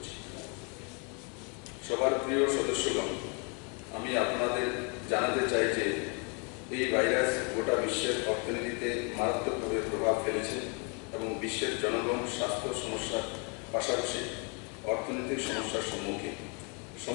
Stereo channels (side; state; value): right; quieter; 35.2 dB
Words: সবার প্রিয় সদস্যগণ, আমি আপনাদের জানাতে চাই যে এই ভাইরাস গোটা বিশ্বের অর্থনীতিতে মারাত্মকভাবে প্রভাব ফেলেছে এবং বিশ্বের জনগণ স্বাস্থ্য সমস্যার পাশাপাশি অর্থনৈতিক সমস্যার সম্মুখীন।